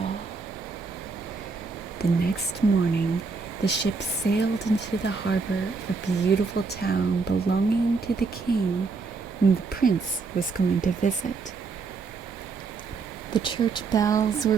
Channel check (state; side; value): quieter; left; 4.5 dB